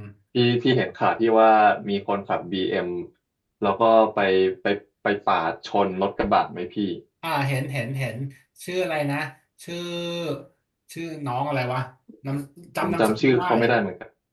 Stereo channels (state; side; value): identical; both; correlation 1.00